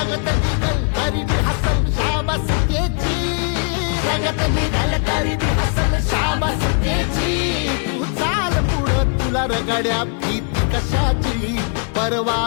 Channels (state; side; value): quieter; right; 39.8 dB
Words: निघल तरी बी हसल शाबास त्याची, रगत निघल तरी बी हसल शाबास त्याची, तू चाल पुढं तुला रगड्या भीती कशाची,